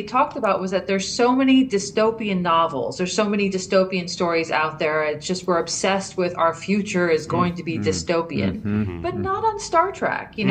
talked about was that there's so many dystopian novels, there's so many dystopian stories out there. It's just we're obsessed with our future is going to be dystopian, but not on Star Trek,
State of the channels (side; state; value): both; identical; correlation 1.00